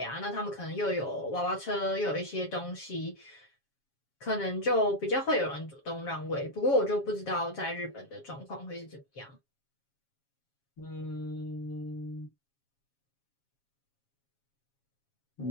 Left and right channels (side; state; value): right; late; 7.3 ms